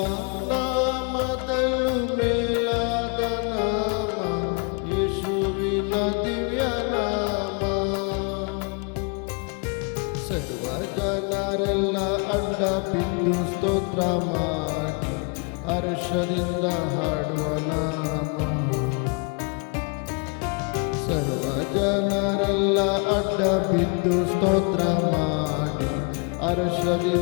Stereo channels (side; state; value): right; quieter; 34.6 dB